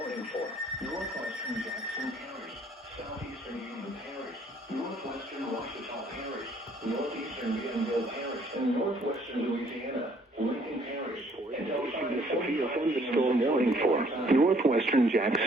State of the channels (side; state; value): both; normal; correlation 0.62